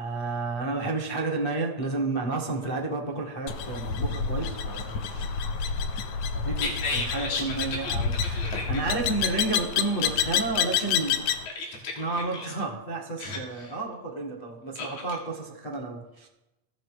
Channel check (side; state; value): right; late; 9.2 ms